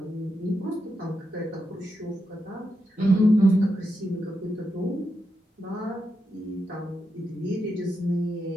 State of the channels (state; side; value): normal; both; correlation 0.85